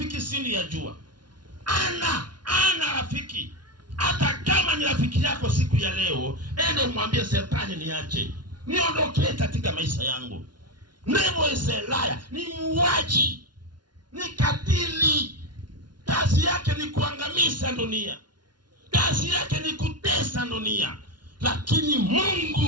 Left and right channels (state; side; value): late; left; 0.70 ms